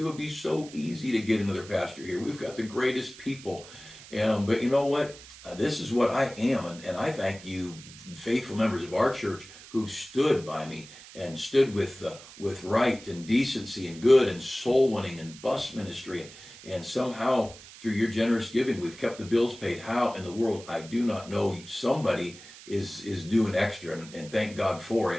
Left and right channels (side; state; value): right; noise; hiss, 18 dB below the sound